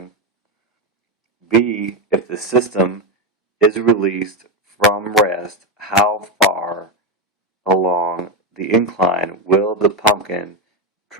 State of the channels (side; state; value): both; normal; correlation 0.09